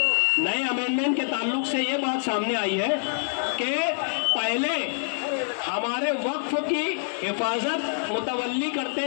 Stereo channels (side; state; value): right; silent; 61 dB below the other